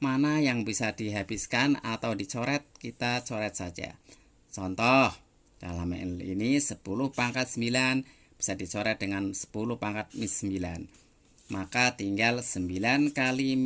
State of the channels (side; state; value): both; identical; correlation 1.00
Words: Mana yang bisa dihabiskan atau dicoret, kita coret saja. Contoh, dalam ini 10 pangkat 9 bisa dicoret dengan 10 pangkat minus 9. Maka tinggal 9 kali